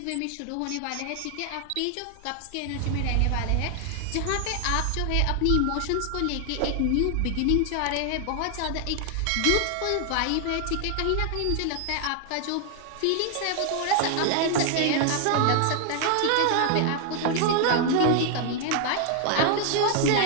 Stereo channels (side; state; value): both; different; correlation 0.00